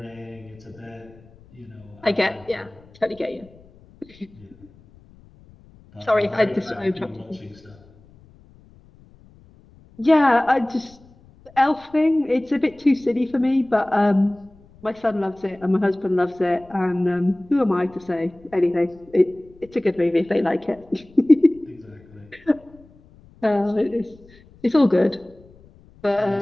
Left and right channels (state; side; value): noise; left; rumble, 26 dB below the sound